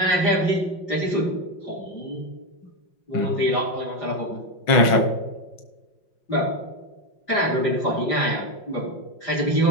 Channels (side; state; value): right; late; 5.6 ms